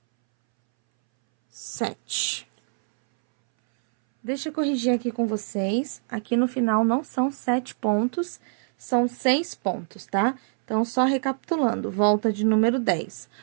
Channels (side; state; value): left; silent; 62 dB below the other